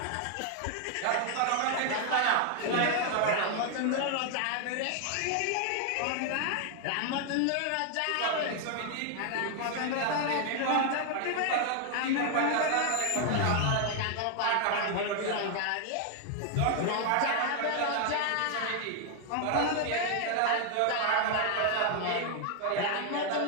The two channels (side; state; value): both; different; correlation 0.00